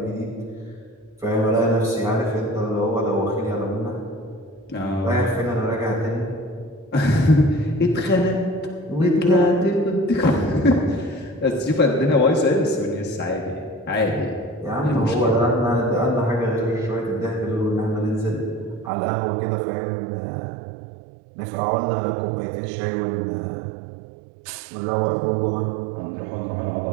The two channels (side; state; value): left; drops out; at 18.9 s